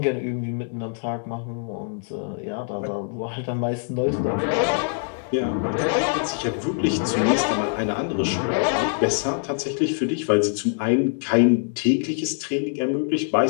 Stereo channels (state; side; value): silent; right; 63 dB below the other